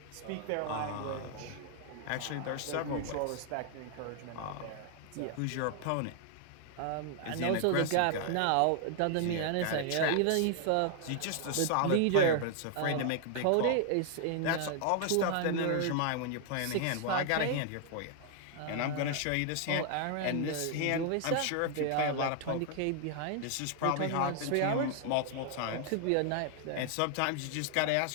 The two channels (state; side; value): different; both; correlation 0.00